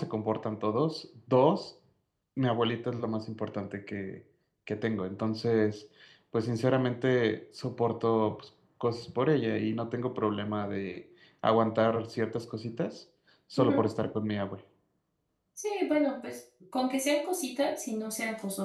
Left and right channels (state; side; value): identical; both; correlation 1.00